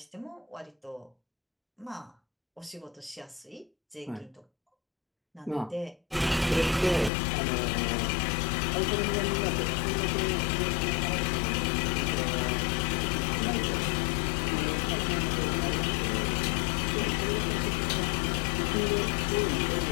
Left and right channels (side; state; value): right; drops out; at 7.1 s